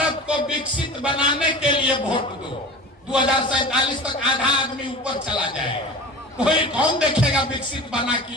को विकसित बनाने के लिए वोट दो। 2047 तक आधा आदमी ऊपर चला जाएगा, कोई कौन देखेगा विकसित बना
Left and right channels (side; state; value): both; normal; correlation 0.35